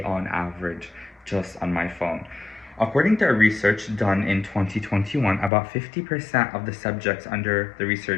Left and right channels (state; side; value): drops out; right; at 5.5 s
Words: on average just on my phone. According to a research done in 2021, about 50% of the subjects under the